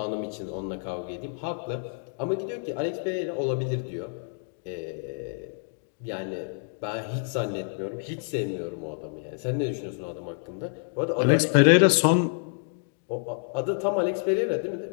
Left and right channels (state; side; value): silent; right; 59 dB below the other